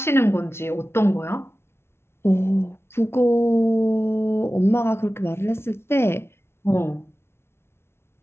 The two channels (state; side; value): late; right; 0.12 ms